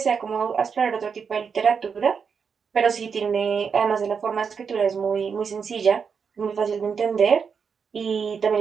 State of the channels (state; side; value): quieter; left; 6.2 dB